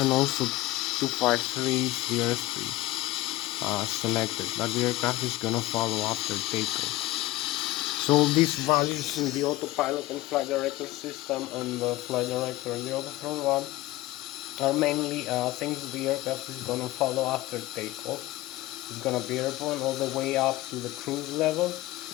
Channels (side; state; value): right; quieter; 17.4 dB